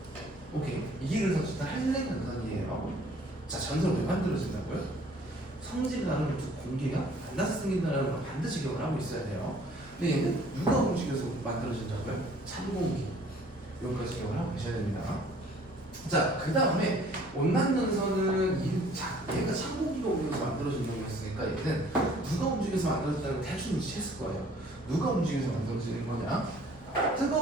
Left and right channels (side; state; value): both; normal; correlation 0.55